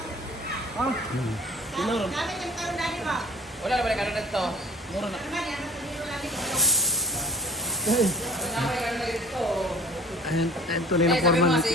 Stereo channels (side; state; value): both; normal; correlation 0.44